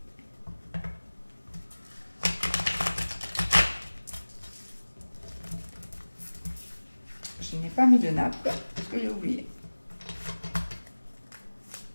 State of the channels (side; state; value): both; inverted; correlation -1.00